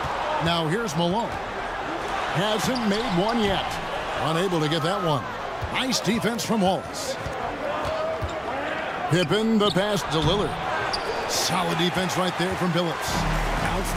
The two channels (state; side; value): identical; both; correlation 1.00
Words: Now here's Malone. Hasn't made one yet. Unable to get that one. Nice defense from Wallace. Pippen the pass to Lillard. Solid defense right there from Billups.